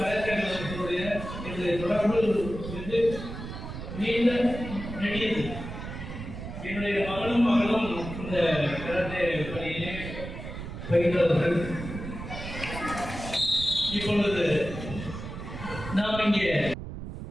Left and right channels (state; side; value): noise; right; rumble, 9 dB below the sound